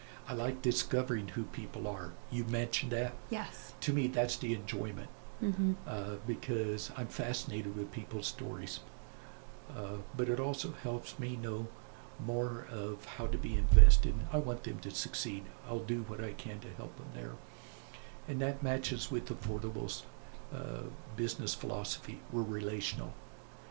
I like discovering who people are. You mentioned that. Yes. To me, that's the enjoyment, Mm-hmm. because I'm fascinated with people's stories. But it also helps me know more of how to be invested. I want them to succeed. I'll do what I can to help them there. And that matches with Affordable's business philosophy. We're relational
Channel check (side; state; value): left; silent; digital silence